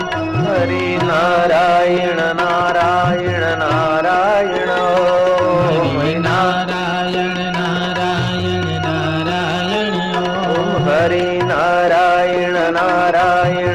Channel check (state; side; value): noise; left; rumble, 25 dB below the sound